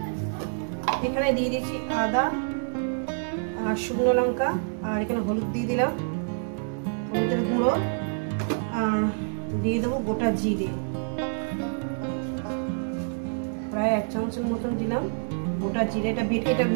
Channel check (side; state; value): left; silent; 60 dB below the other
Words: এখানে দিয়ে দিয়েছি আদা আর শুকনো লঙ্কা, আর এখানে হলুদ দিয়ে দিলাম, হলুদের গুঁড়ো, আর দিয়ে দেবো গোটা জিরে, প্রায় 1 চামচের মতন দিলাম গোটা জিরে। এটা বেটে এটা